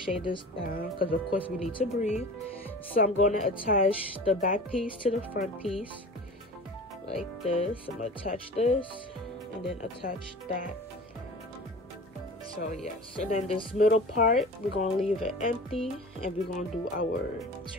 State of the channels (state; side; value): normal; both; correlation 0.38